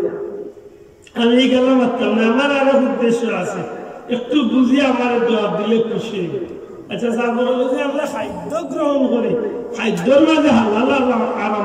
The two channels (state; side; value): identical; both; correlation 1.00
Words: আমি গেলাম মারতাম না, আমার আরো উদ্দেশ্য আছে, একটু বুঝি আমার জবাব দিলে খুশি। আচ্ছা আমরা খাদ্য গ্রহণ করি, খাদ্যর মাঝে হালাল